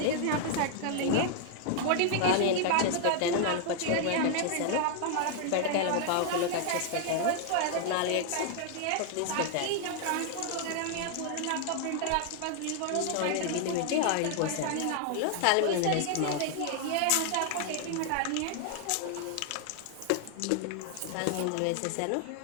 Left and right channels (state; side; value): different; both; correlation 0.00